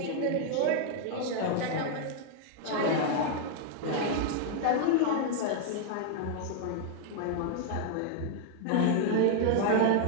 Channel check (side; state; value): both; different; correlation 0.00